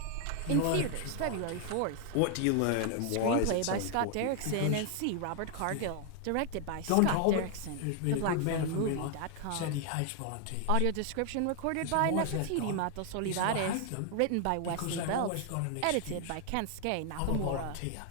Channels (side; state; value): both; different; correlation 0.00